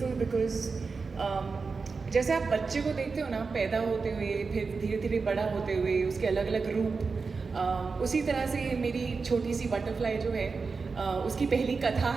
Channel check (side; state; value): left; quieter; 4.6 dB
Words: because जैसे आप बच्चे को देखते हो ना पैदा होते हुए, फिर धीरे धीरे बड़ा होते हुए, उसके अलग अलग रूप, उसी तरह से मेरी छोटी सी बटरफ्लाई जो है उसकी पहली कथा